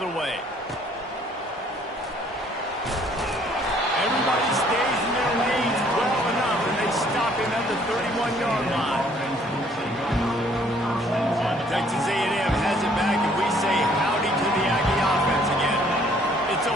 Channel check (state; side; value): normal; both; correlation 0.61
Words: way. Everybody stays in their lanes well enough, and they stop him at the 31-yard line. Texas A&M has it back, and we say howdy to the Aggie offense again. It's a